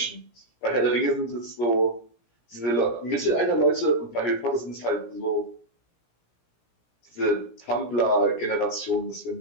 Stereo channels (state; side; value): late; right; 17 ms